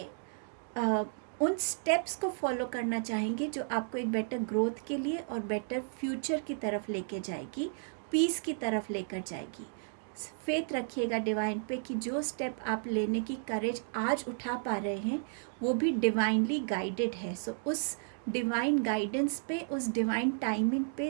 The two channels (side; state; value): left; silent; digital silence